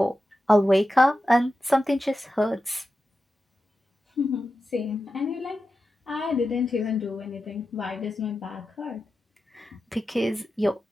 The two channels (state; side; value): normal; both; correlation 0.92